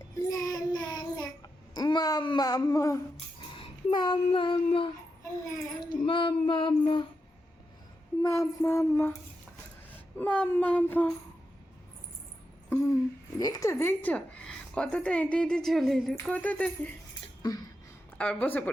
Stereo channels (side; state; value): both; normal; correlation 0.87